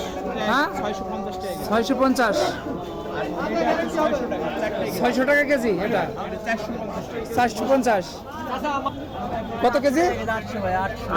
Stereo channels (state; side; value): identical; both; correlation 1.00